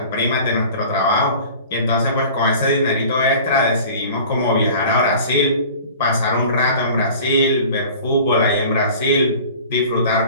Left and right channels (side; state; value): both; inverted; correlation -0.43